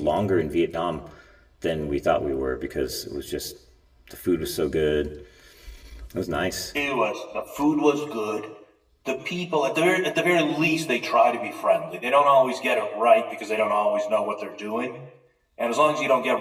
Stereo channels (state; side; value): identical; both; correlation 1.00